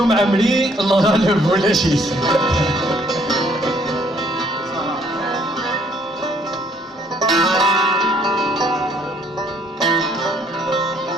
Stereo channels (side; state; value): both; normal; correlation 0.64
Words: معمري الله غالب ولا شي